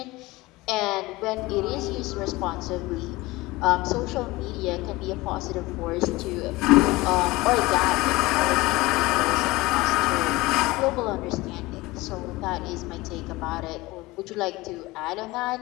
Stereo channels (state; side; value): quieter; right; 20.8 dB